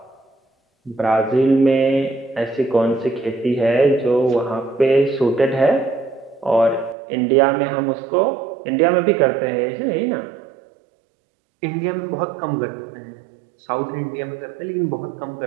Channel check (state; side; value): drops out; left; at 7.0 s